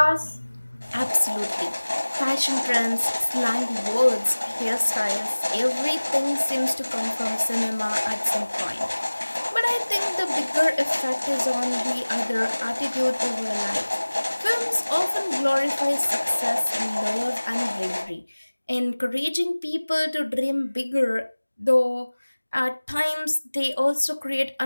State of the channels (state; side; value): inverted; both; correlation -1.00